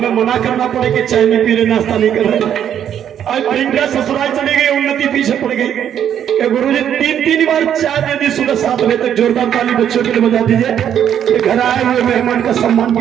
मना करना पड़े कि चाय नहीं पी रहे, नाश्ता नहीं कर रहे। आज प्रियंका ससुराल चली गई, उन्नति पीछे पड़ गई कि गुरुजी 3 बार चाय दे दी सुबह 7 बजे तक। जोरदार ताली बच्चों के लिए बजा दीजिए। घर आए हुए मेहमान का सम्मान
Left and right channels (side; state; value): left; quieter; 9.5 dB